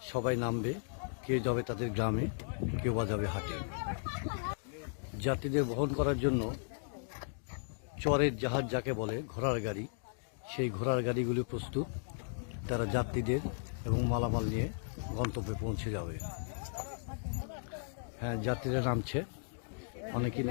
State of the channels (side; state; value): right; silent; digital silence